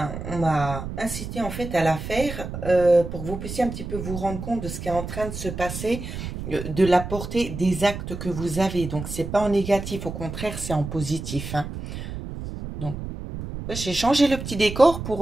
on m'a incité en fait à la faire pour que vous puissiez un petit peu vous rendre compte de ce qui est en train de se passer, de la portée des actes que vous avez. Donc, c'est pas en négatif, au contraire, c'est en positif, hein. Donc, j'ai changé le petit décor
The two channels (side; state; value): right; noise; rumble, 8 dB below the sound